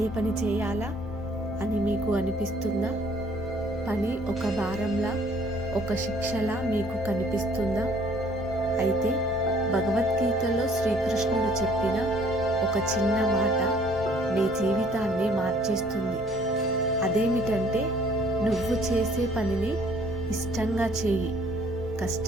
పని చేయాలా అని మీకు అనిపిస్తుందా? పని ఒక భారంలా, ఒక శిక్షలా మీకు కనిపిస్తుందా? అయితే భగవద్గీతలో శ్రీకృష్ణుడు చెప్పిన ఒక చిన్న మాట మీ జీవితాన్ని మార్చేస్తుంది. అదేమిటంటే, నువ్వు చేసే పనిని ఇష్టంగా చేయి,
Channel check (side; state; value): both; normal; correlation 0.59